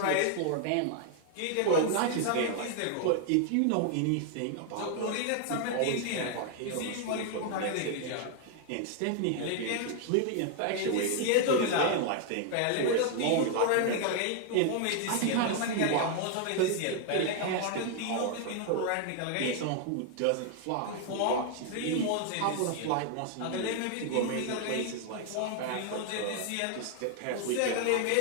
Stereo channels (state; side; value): different; both; correlation 0.00